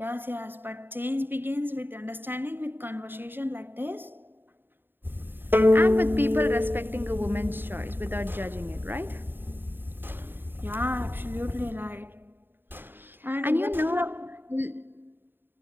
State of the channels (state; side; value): late; left; 0.097 ms